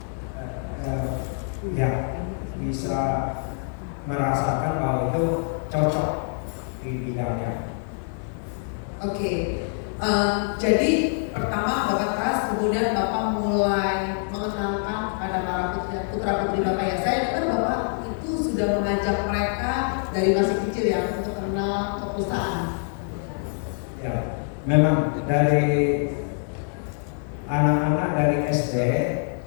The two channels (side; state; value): right; silent; 62 dB below the other